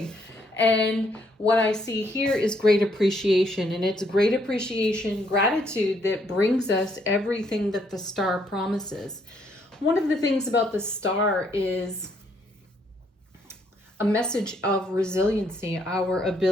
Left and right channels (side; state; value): both; normal; correlation 0.71